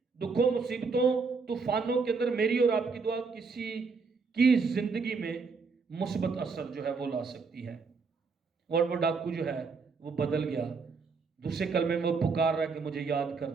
دکھوں، مصیبتوں، طوفانوں کے اندر میری اور آپ کی دعا کسی کی زندگی میں مثبت اثر جو ہے وہ لا سکتی ہے. اور وہ ڈاکو جو ہے وہ بدل گیا. دوسرے کلمے میں وہ پکار رہا ہے کہ مجھے یاد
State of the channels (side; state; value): left; quieter; 4.8 dB